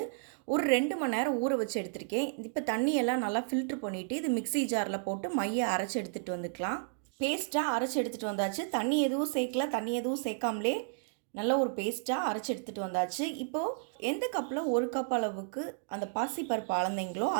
ஒரு 2 மணி நேரம் ஊற வச்சு எடுத்திருக்கேன். இப்போ தண்ணியெல்லாம் நல்லா ஃபில்ட்ரு பண்ணிவிட்டு இது மிக்ஸி ஜாரில் போட்டு மையை அரைச்சி எடுத்துகிட்டு வந்துக்கலாம். பேஸ்ட்டாக அரைச்சி எடுத்துகிட்டு வந்தாச்சு. தண்ணி எதுவும் சேர்க்காமலே நல்ல ஒரு பேஸ்ட்டாக அரைச்சி எடுத்துகிட்டு வந்தாச்சு. இப்போது எந்த கப்பில் 1 கப் அளவுக்கு அந்த பாசிப்பருப்பு அளந்தீங்களோ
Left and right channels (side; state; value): left; silent; digital silence